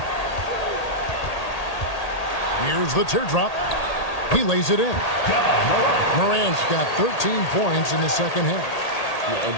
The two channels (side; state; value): right; late; 1.8 ms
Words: Here's the teardrop. He lays it in. Morant's got 13 points in the second half.